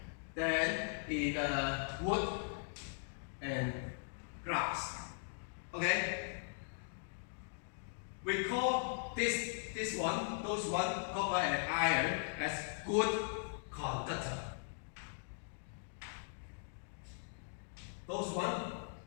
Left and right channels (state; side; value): silent; right; digital silence